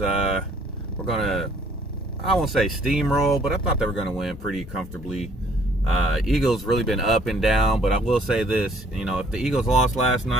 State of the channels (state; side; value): normal; both; correlation 0.61